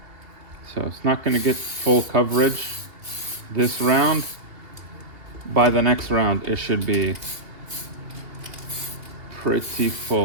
So it's not going to get full coverage this round. By the next round, it should be pretty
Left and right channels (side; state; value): left; late; 2.8 ms